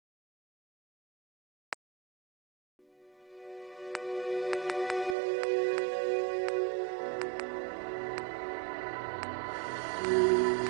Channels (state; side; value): drops out; left; at 5.2 s